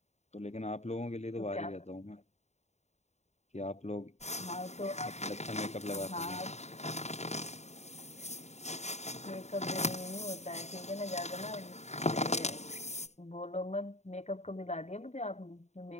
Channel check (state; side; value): late; right; 0.32 ms